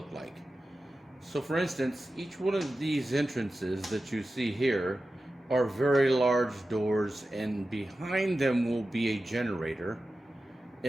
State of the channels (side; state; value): both; normal; correlation 0.94